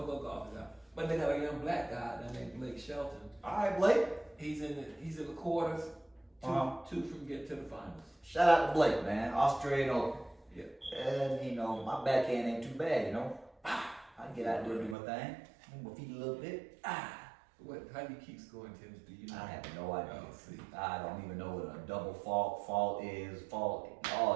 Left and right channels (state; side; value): drops out; left; at 15.0 s